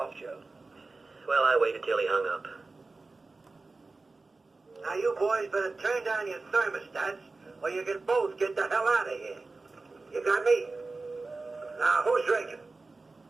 Joe. Well, I waited till he hung up. Now you boys better turn down your thermostats or you can both get the hell out of here. You got me? Now, who's drinking?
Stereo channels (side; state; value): left; quieter; 3.6 dB